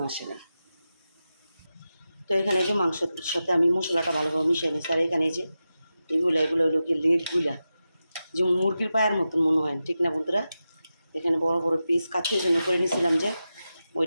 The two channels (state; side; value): inverted; both; correlation -0.91